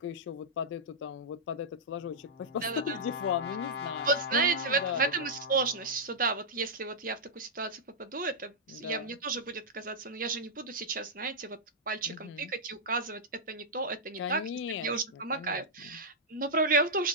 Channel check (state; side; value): normal; both; correlation -0.10